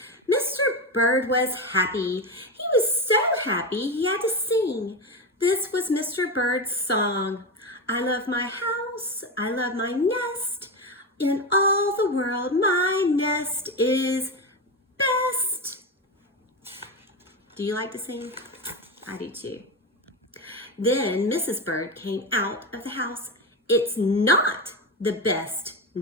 Mr. Bird was happy. He was so happy he had to sing. This was Mr. Bird's song. I love my house. I love my nest. In all the world, my nest is best. Do you like to sing? I do too. Then Mrs. Bird came out of the house. It's not the best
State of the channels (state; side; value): normal; both; correlation 0.17